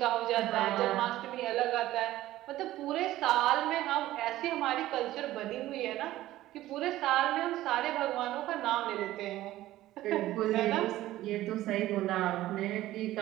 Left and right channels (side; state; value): left; quieter; 15.2 dB